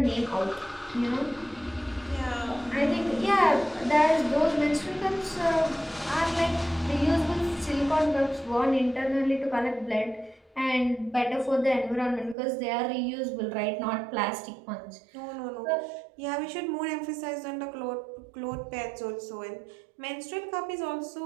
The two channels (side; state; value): left; drops out; at 12.4 s